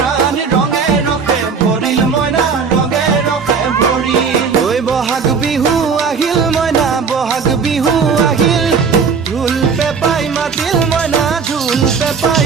ৰঙে ৰখে ভৰিল মইনা ৰঙে ৰখে ভৰিল ঐ বহাগ বিহু আহিল মইনা বহাগ বিহু আহিল ঢোল পেপাই মাতিল মইনা ঢোল পেপাই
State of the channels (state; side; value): quieter; left; 5.6 dB